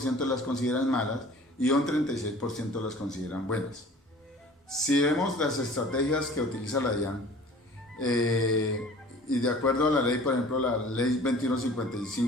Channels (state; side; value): normal; both; correlation 0.46